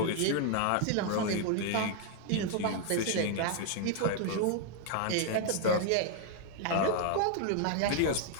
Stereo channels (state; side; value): different; both; correlation 0.00